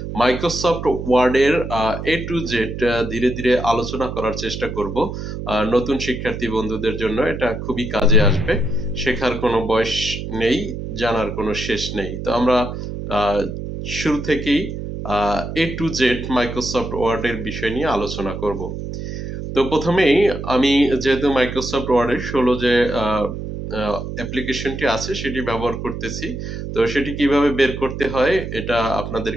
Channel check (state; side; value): noise; right; hum, 7 dB below the sound